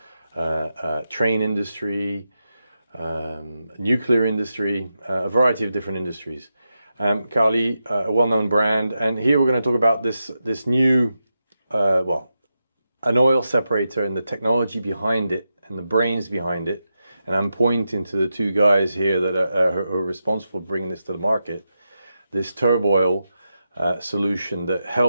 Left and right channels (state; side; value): inverted; both; correlation -0.88